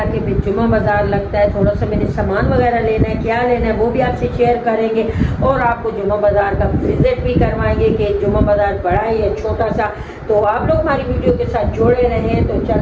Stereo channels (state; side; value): identical; both; correlation 1.00